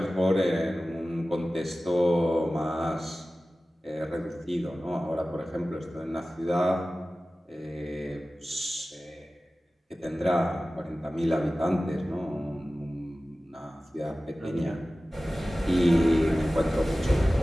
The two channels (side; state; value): both; normal; correlation 0.96